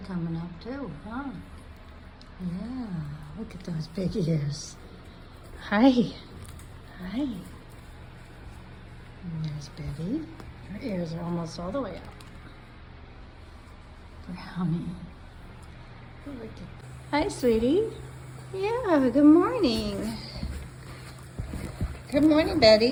up too, huh? Yeah, look at those big ears. Hi. Hi. And there's Betty. Her ears are almost all the way up. Brownie. Look at. Hi, sweetie. Yeah, good morning. Good morning,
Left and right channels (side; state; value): both; identical; correlation 1.00